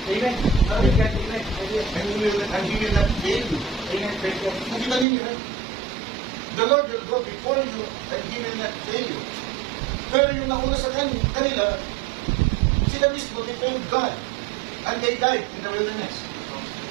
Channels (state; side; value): drops out; left; at 5.1 s